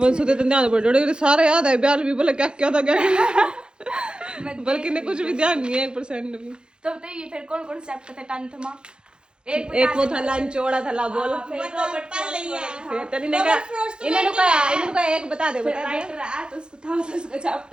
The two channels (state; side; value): late; left; 0.049 ms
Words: वंशु तो ध्यान पड़ जोड़े सारे याद है ब्याल भी बोले क्या क्या था क्या बल्कि ने कुछ भी ध्यान नहीं है 1% भी तो बताइए फिर कौन कौन चैप्टर थे 10th में एक वो था लंच चौड़ा था बोल फिर तनी ने कहा इन्होंने कहा एक बता दे राइटर आया तो उसको था उसका